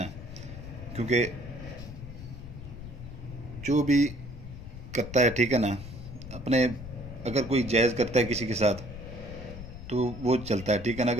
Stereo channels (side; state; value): left; noise; rumble, 11 dB below the sound